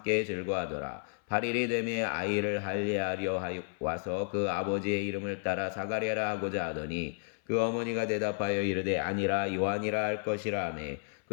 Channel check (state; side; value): silent; right; 56 dB below the other